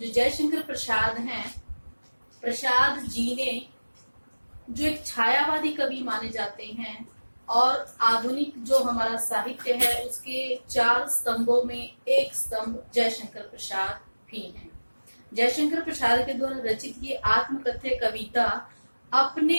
जयशंकर प्रसाद हैं, प्रसाद जी ने जो एक छायावादी कवि माने जाते हैं और आधुनिक जो हमारा साहित्य है उसके 4 स्तंभों में एक स्तंभ जयशंकर प्रसाद भी हैं। जयशंकर प्रसाद के द्वारा रचित ये आत्मकथ्य कविता अपने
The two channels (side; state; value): both; inverted; correlation -1.00